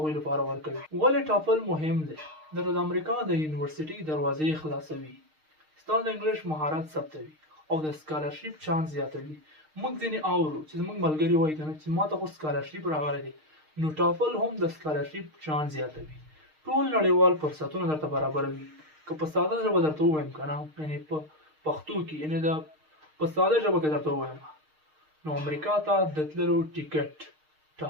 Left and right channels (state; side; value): late; left; 6.5 ms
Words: لپاره ورکوي. ولې ټافل مهم دی؟ د امریکا د یونیورسيټي دروازې خلاصوي، ستا د انګلیش مهارت ثبتوي او د سکالرشپ چانس زیاتوي. موږ ځینې اورو چې زموږ ملګري وایي که نه چې ما ته خو سکالرشپ راغلی دی، نو ټافل هم د سکالرشپ چانس زیاتوي. ټول نړیوال فرصتونه درته برابروي. که په ساده ژبه درته ووایم که نه، یعنې په پښتو کې، یعنې په ساده ژبه کې درته ووایم، نو امریکا ته د تللو ټیکټ